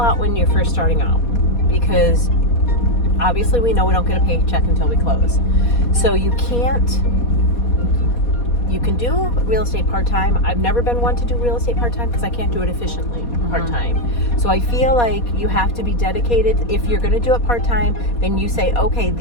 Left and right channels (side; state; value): right; late; 4.2 ms